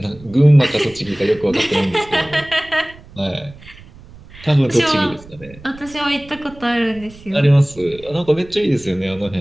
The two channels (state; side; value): noise; right; rumble, 21 dB below the sound